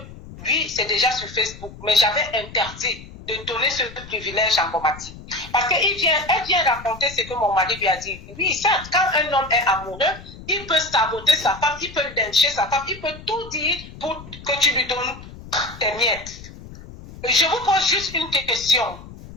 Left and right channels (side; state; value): left; noise; rumble, 16 dB below the sound